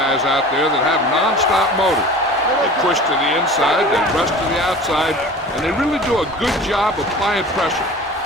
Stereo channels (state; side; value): normal; both; correlation 0.40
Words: out there that have nonstop motor. They push to the inside, they rush to the outside, and they really do a good job applying pressure,